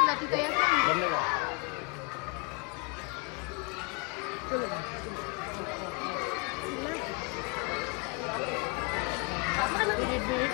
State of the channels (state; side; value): quieter; right; 30.6 dB